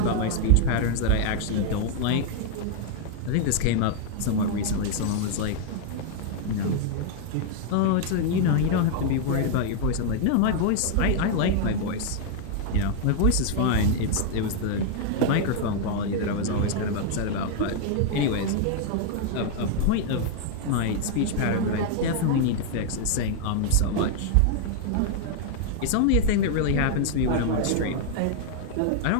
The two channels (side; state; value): both; different; correlation 0.00